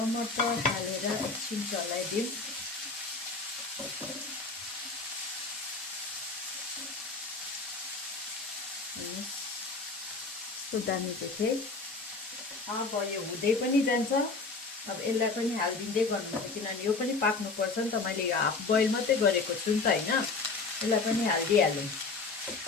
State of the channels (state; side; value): quieter; right; 4.0 dB